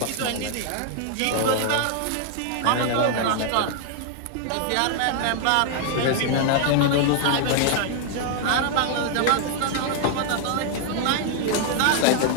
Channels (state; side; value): different; both; correlation 0.00